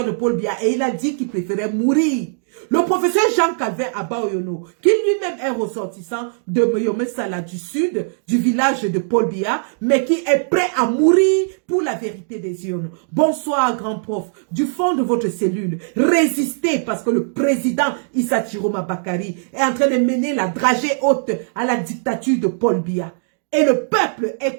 de Paul Biya. Et il a dit qu'il préférait mourir. Le professeur Jean-Calvin Abaoyono, qui lui-même est ressortissant de Moyome Sala du sud, du village de Paul Biya, mais qui est prêt à mourir pour la vérité des urnes. Bonsoir, grand prof. Du fond de votre cellule, résistez parce que le président Issa Chiroma Bakari est en train de mener la dragée haute à la dictature de Paul Biya. Et le peuple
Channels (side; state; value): left; silent; digital silence